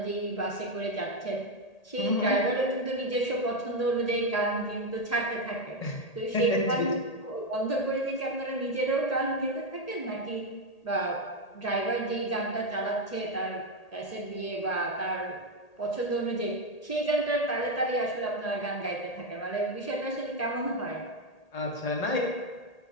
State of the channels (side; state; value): right; late; 1.8 ms